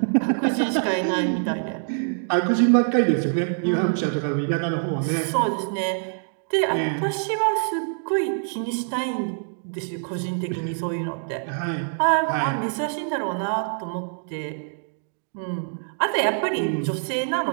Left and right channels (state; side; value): silent; left; digital silence